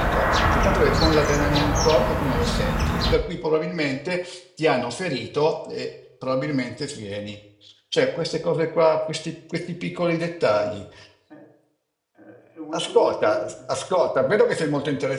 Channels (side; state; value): both; identical; correlation 1.00